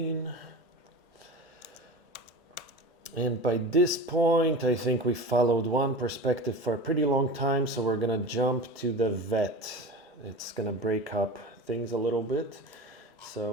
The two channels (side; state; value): both; normal; correlation 0.31